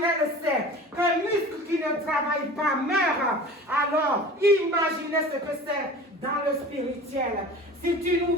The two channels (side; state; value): both; normal; correlation 0.40